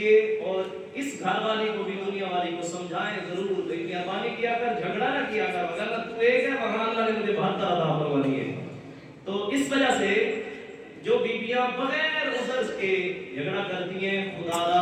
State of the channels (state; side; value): identical; both; correlation 1.00